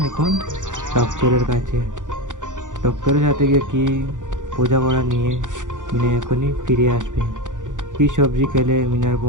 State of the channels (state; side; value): late; left; 0.87 ms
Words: এখন ডক্টরের কাছে। ডক্টরের সাথে গিয়ে কি বোঝাপড়া নিয়ে মিনা এখনই ফিরে আসবে। কি সবজি খেলে মিনার